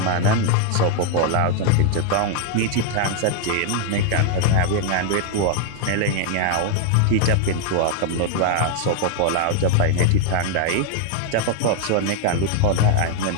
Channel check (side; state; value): both; different; correlation 0.00